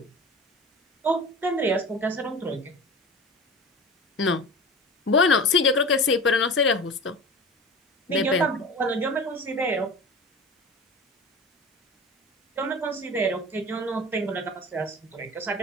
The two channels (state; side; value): normal; both; correlation 0.34